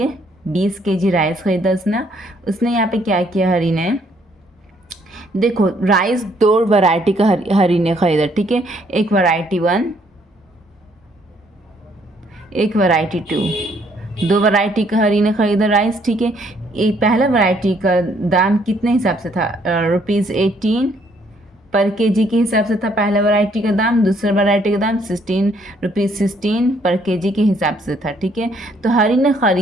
20 kg राइस ख़रीदा उसने यहाँ पे क्या किया, हरी ने देखो राइस दो वैरायटी का हरी ने ख़रीदा। ठीक है, एक वैरायटी 1, एक वैरायटी 2, दो वैरायटी का हरी ने ख़रीदा राइस। ठीक है, एक पहला वैरायटी का दाम कितने हिसाब से था, ₹18 पर केजी के हिसाब से था पहला वैरायटी का दाम। दूसरा वैरायटी का दाम ₹16 पर केजी के हिसाब से था। ठीक है, तो हरी ने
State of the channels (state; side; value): normal; both; correlation 0.67